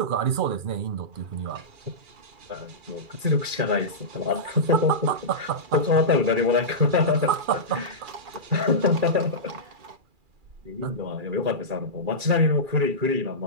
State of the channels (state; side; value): late; left; 2.4 ms